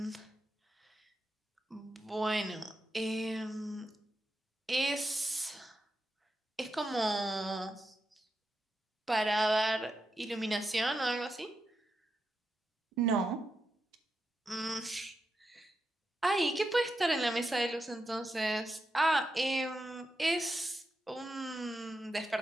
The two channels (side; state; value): both; normal; correlation 0.87